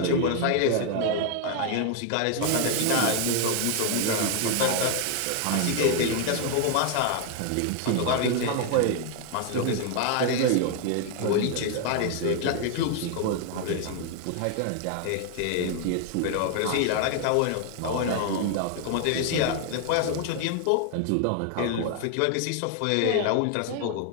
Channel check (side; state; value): both; different; correlation 0.00